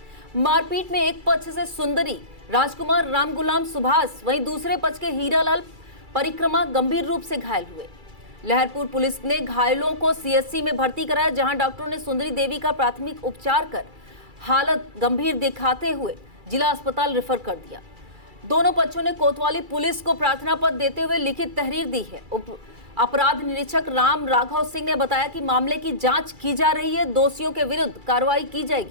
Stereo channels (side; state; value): left; late; 2.3 ms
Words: मारपीट में एक पक्ष से सुंदरी, राजकुमार, राम गुलाम, सुभाष, वहीं दूसरे पक्ष के हीरालाल परिक्रमा गंभीर रूप से घायल हुए। लहरपुर पुलिस ने घायलों को सीएचसी में भर्ती कराया, जहां डॉक्टरों ने सुंदरी देवी का प्राथमिक उपचार कर हालत गंभीर दिखाते हुए जिला अस्पताल रेफर कर दिया। दोनों पक्षों ने कोतवाली पुलिस को प्रार्थना पत्र देते हुए लिखित तहरीर दी है। अपराध निरीक्षक राम राघव सिंह ने बताया कि मामले की जांच की जा रही है, दोषियों के विरुद्ध कार्रवाई की